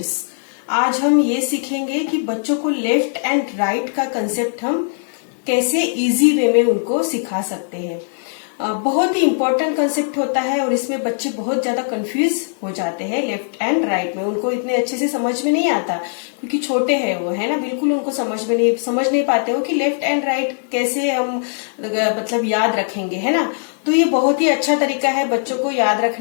आज हम ये सीखेंगे कि बच्चों को left and right का concept हम कैसे इजी वे में उनको सिखा सकते हैं। बहुत ही इम्पोर्टेंट कंसेप्ट होता है और इसमें बच्चे बहुत ज्यादा कंफ्यूज हो जाते हैं लेफ्ट एंड राइट में। उनको इतने अच्छे से समझ में नहीं आता क्योंकि छोटे हैं वो, है ना, बिल्कुल उनको समझ नहीं पाते हो कि लेफ्ट एंड राइट कैसे हम मतलब याद रखेंगे, है ना। तो ये बहुत ही अच्छा तरीका है बच्चों को याद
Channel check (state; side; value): silent; right; digital silence